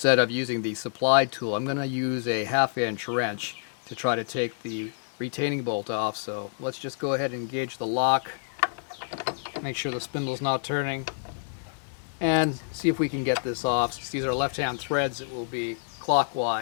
of using the supplied tool, I'm going to use a 1/2-inch wrench to try to take the retaining bolt off. So let's just go ahead and engage the lock, make sure the spindle's not turning, and see if we can get this off. Since these are left-hand threads, it will be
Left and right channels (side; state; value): right; silent; digital silence